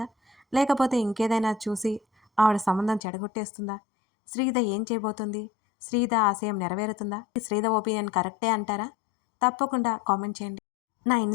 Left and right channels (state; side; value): drops out; right; at 3.0 s